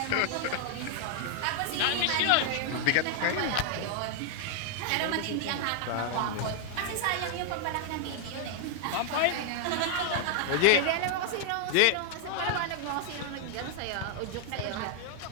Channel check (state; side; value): different; both; correlation 0.00